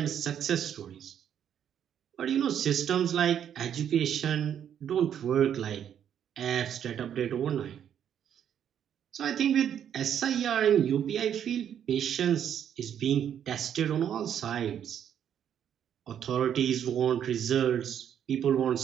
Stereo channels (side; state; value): left; quieter; 9.3 dB